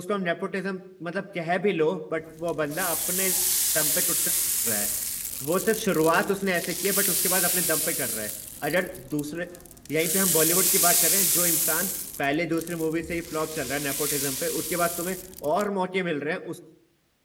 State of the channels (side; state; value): both; identical; correlation 1.00